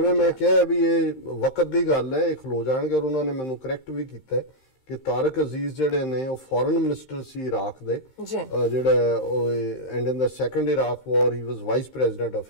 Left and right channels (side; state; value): right; late; 15 ms